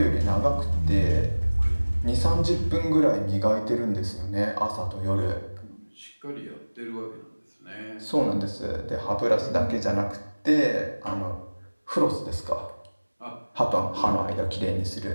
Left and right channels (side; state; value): both; inverted; correlation -1.00